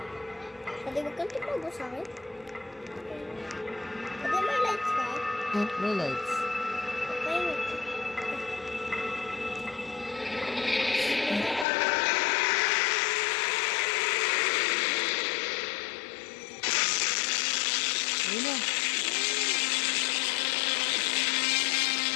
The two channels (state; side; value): drops out; right; at 11.7 s